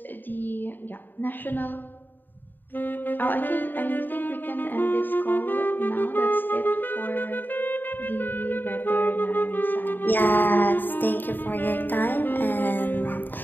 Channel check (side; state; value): right; late; 0.091 ms